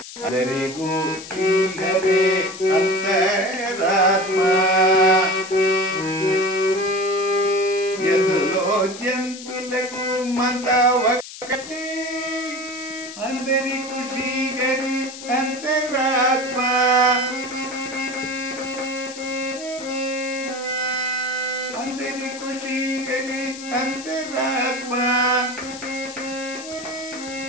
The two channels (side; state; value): left; noise; hiss, 13 dB below the sound